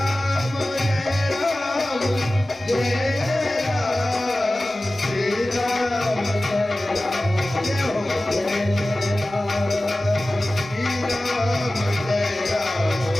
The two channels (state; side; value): normal; both; correlation 0.96